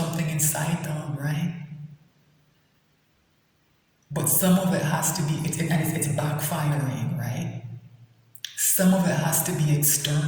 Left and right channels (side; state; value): both; identical; correlation 1.00